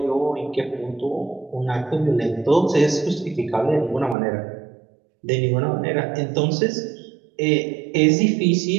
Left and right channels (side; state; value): left; drops out; at 4.2 s